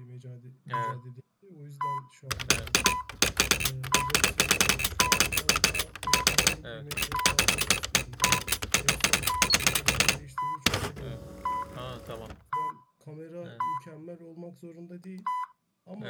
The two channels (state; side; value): identical; both; correlation 1.00